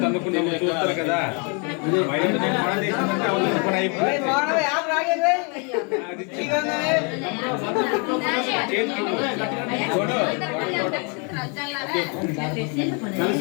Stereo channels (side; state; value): right; quieter; 35.4 dB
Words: తన్నుకున్నాము చూస్తారు కదా.